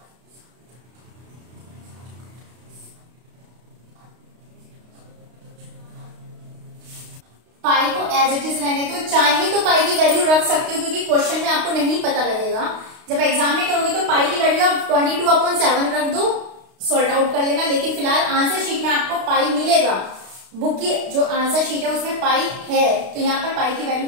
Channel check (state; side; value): late; left; 32 ms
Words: पाई को एज इट इज रहने दो, चाहे तो पाई की वैल्यू रख सकते हो क्योंकि क्वेश्चन में आपको नहीं पता लगेगा जब एग्जाम में करोगे तो पाई की वैल्यू आप 22/7 रख दो, सॉल्ट आउट कर लेना। लेकिन फिलहाल आंसर शीट में आपको पाई मिलेगा, बुक की जो आंसर शीट है उसमें पाई है, तो यहाँ पर पाई की वैल्यू